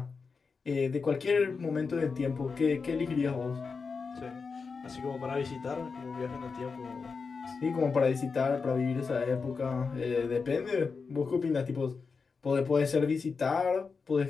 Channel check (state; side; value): quieter; right; 5.0 dB